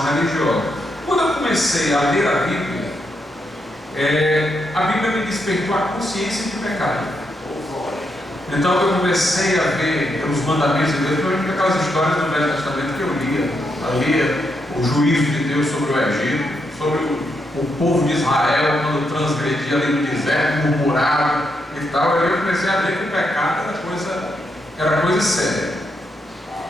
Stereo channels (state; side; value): normal; both; correlation 0.80